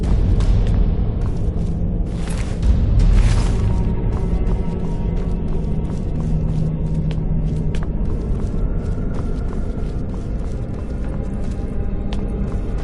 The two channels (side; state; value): both; identical; correlation 1.00